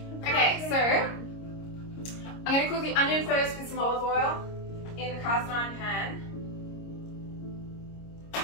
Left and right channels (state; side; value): late; right; 26 ms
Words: Okay, so I'm going to cook the onion first with some olive oil in the cast iron pan,